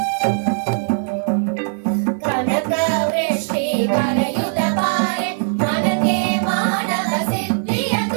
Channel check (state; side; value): silent; left; digital silence